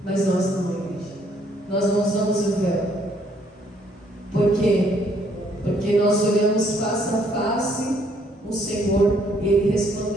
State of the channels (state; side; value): normal; both; correlation 0.67